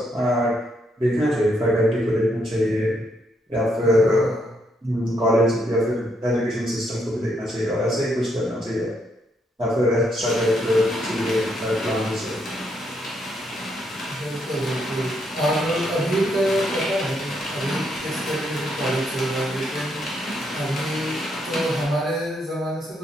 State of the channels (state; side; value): normal; both; correlation 0.75